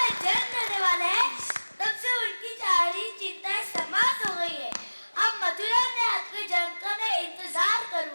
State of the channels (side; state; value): both; inverted; correlation -1.00